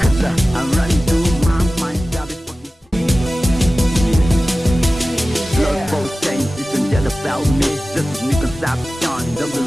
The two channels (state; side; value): normal; both; correlation 0.96